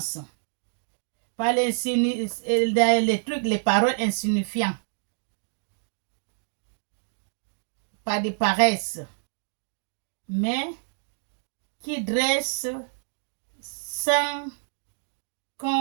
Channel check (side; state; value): left; silent; digital silence